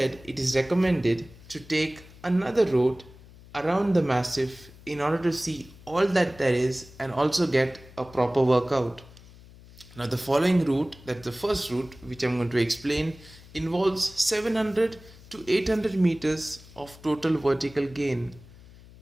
it is recommended to take another route around the massif in order to see all that there is and also get a proper workout. Now, the following route, that's the first route which I'm going to explain, involves 700 to 800 meters of total vertical gain,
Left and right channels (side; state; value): left; noise; hum, 21 dB below the sound